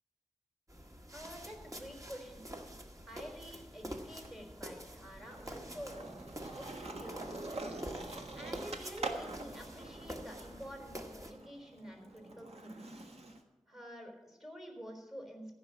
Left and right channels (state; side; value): normal; both; correlation 0.71